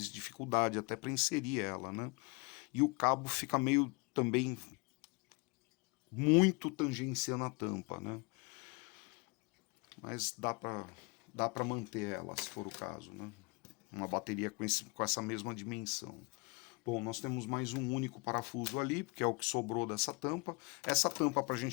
dificuldade até para inserir ela, né? E o cabo fica meio também muito tangenciando a tampa, né? Mas dá para manter ela, se for o caso, né? Uma bateria com essa mesma dimensão. Bom, nós temos mais um único parafuso ali, porque é o que sobrou dessa tampa. Essa tampa, para a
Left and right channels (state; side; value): quieter; right; 30.0 dB